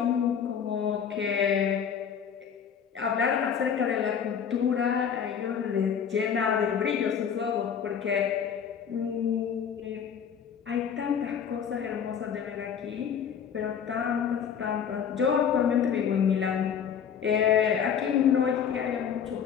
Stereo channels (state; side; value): quieter; right; 7.7 dB